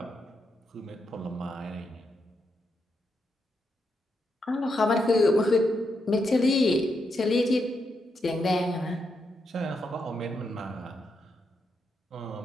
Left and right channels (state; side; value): normal; both; correlation 0.82